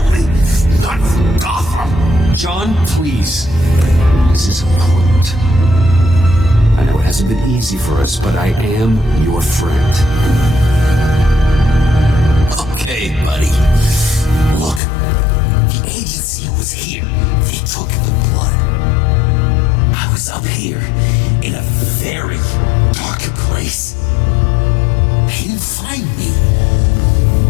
not for Gotham. John, please. This is important. I know it hasn't been easy for us, but I am your friend. Okay, buddy. Look, the agency was here. They took the blood. I was up here in a very dark place. They didn't find me.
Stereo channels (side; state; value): right; drops out; at 14.8 s